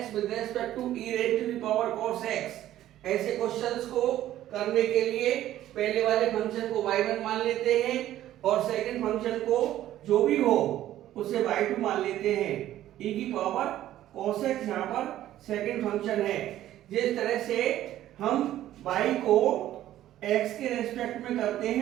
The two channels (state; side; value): quieter; left; 13.2 dB